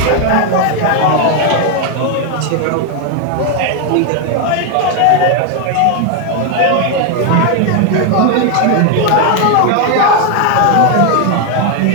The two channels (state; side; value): different; both; correlation 0.01